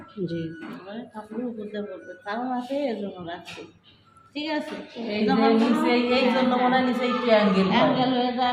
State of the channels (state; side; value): identical; both; correlation 1.00